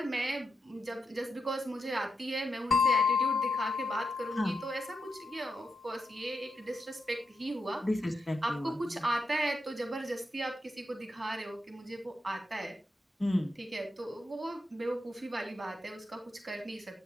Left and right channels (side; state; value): both; normal; correlation 0.85